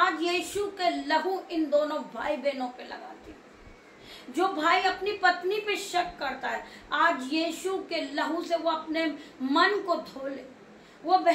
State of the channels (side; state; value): both; identical; correlation 1.00